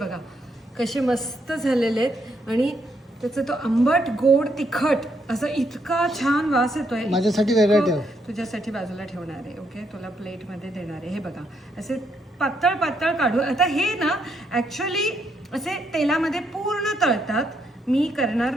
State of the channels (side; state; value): both; normal; correlation 0.76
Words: कसे मस्त झालेले आहेत, आणि त्याचं तो आंबट गोड तिखट असं इतका छान वास येतोय. माझ्यासाठी वेगळं ठेव. तुझ्यासाठी बाजूला ठेवणार आहे. ओके, तुला प्लेटमध्ये देणार आहे. हे बघा, असे पातळ पातळ काढू. आता हे ना ॲक्च्युली असे तेलामध्ये पूर्ण तळतात, मी करणार